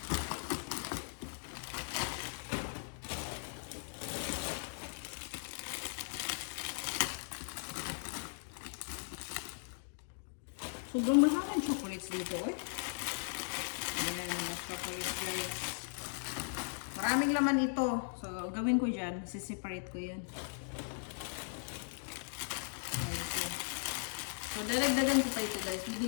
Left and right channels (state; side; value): silent; right; digital silence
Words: Sobrang maraming chocolates dito eh. Ayan, mga chocolates guys. Maraming laman ito. So, gawin ko dyan. Separate ko yan. Okay. So, dadagdagan ko pa ito guys.